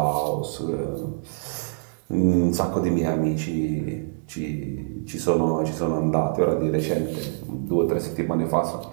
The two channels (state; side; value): silent; left; 62 dB below the other